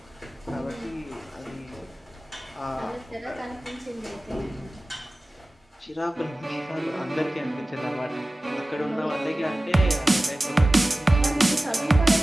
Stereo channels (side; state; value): both; normal; correlation 0.97